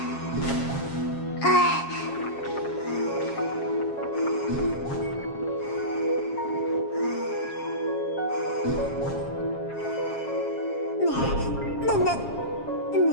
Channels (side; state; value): right; late; 7.3 ms